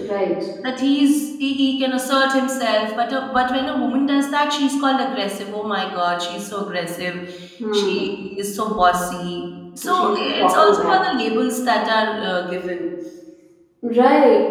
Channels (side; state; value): both; identical; correlation 1.00